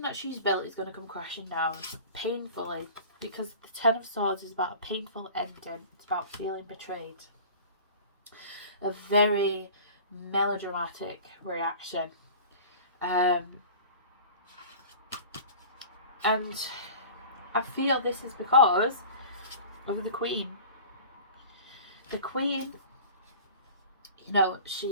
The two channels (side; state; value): both; inverted; correlation -0.40